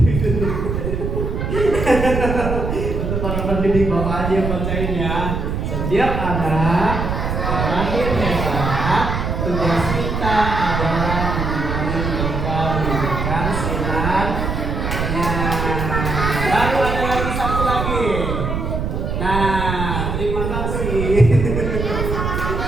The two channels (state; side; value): noise; right; rumble, 2 dB below the sound